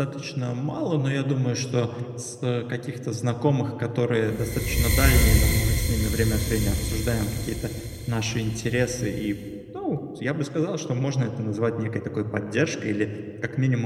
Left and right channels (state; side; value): identical; both; correlation 1.00